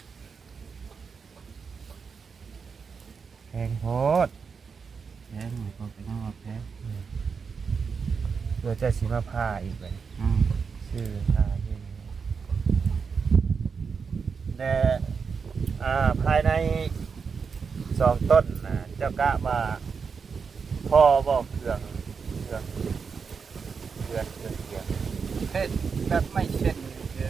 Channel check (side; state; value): left; quieter; 5.7 dB